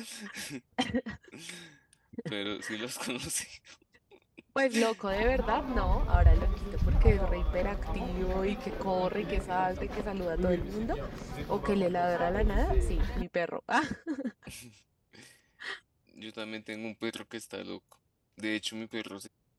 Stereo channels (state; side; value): identical; both; correlation 1.00